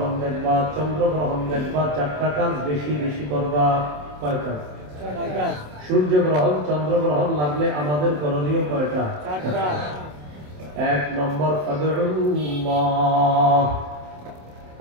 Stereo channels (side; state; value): left; late; 27 ms